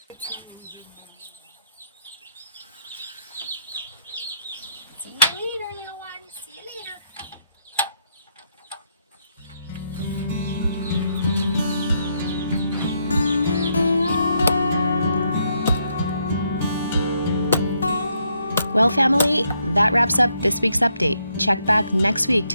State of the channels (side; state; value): both; inverted; correlation -0.76